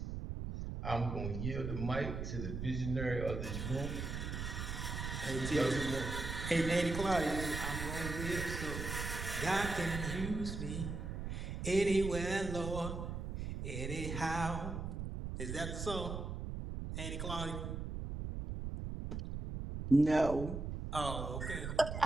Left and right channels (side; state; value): right; noise; rumble, 4 dB below the sound